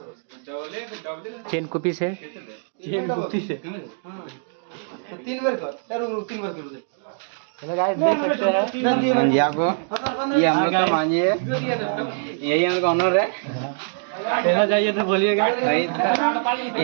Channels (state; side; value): silent; left; digital silence